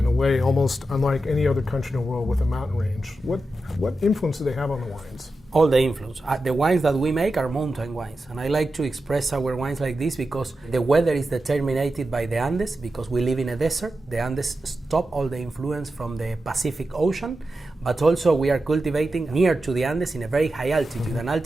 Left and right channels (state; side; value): normal; both; correlation 0.91